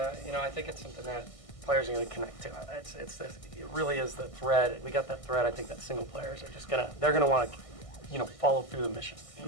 think it's something that players are going to connect to. It really is the thread. We got that thread. I think that single players are just they're gonna want to, follow through the mission. I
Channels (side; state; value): right; late; 1.6 ms